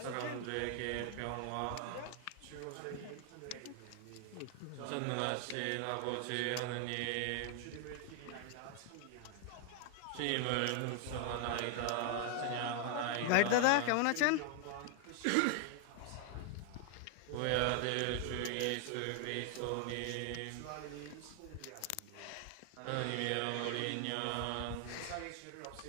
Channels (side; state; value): both; different; correlation 0.00